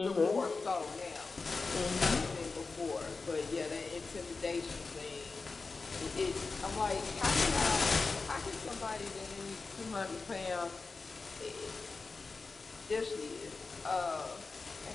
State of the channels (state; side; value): quieter; right; 4.1 dB